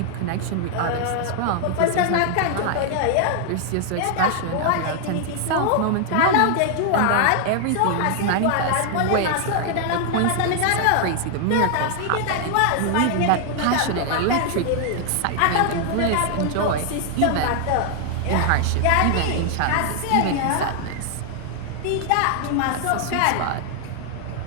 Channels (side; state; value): both; different; correlation 0.00